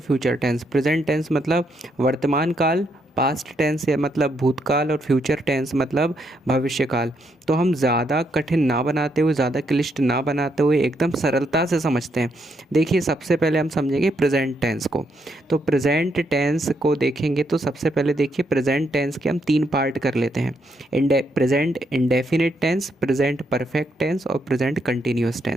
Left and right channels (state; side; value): normal; both; correlation 0.77